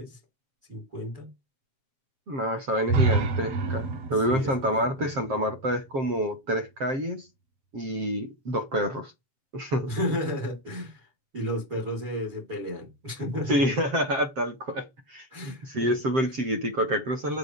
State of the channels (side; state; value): left; late; 7.5 ms